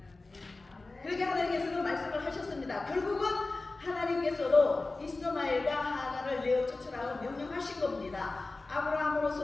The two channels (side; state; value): right; quieter; 3.4 dB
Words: 그렇게 하나님께서는 말씀을 하셨습니다. 결국은 하나님께서도 이스마엘과 하갈을 내어 쫓으라고 명령하신 겁니다.